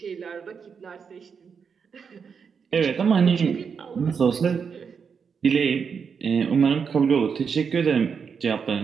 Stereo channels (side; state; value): left; quieter; 6.3 dB